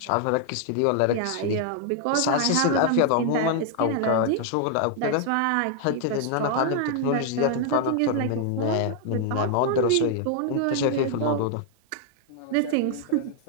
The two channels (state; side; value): different; both; correlation 0.00